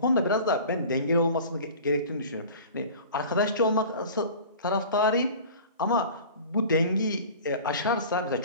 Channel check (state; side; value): inverted; both; correlation -0.40